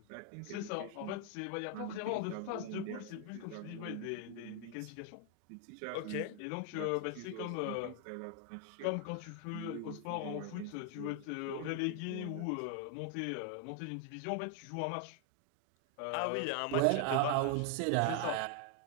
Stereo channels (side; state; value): both; different; correlation 0.00